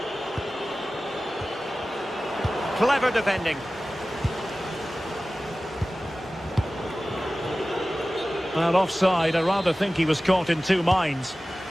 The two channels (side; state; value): both; normal; correlation 0.96